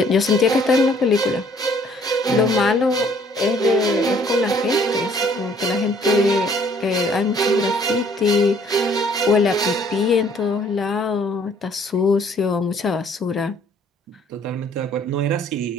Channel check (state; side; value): normal; both; correlation 0.60